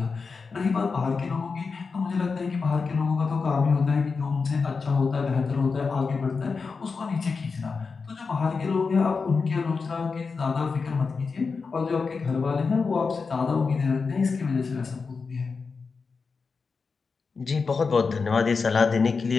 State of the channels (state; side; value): quieter; right; 4.8 dB